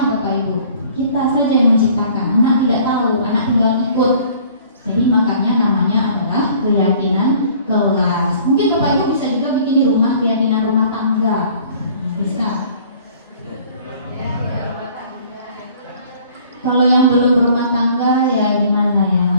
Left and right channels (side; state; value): both; inverted; correlation -0.53